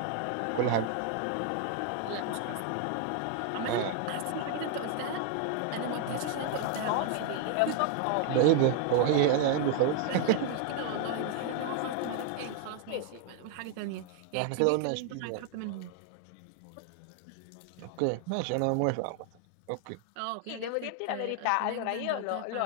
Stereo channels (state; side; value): different; both; correlation 0.00